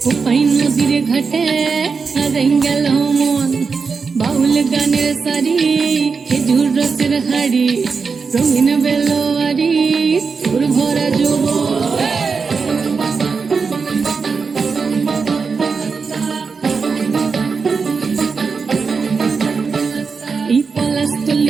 কোপাই নদীর ঘাটে হারাই গেল মন বাউল গানের সারি খেজুর রসের হাড়ি রঙিন বেলোয়ারি তোর ভরা যৌবন এই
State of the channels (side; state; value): left; quieter; 5.1 dB